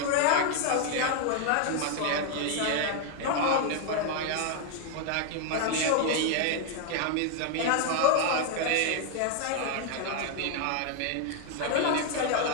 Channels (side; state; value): both; different; correlation 0.01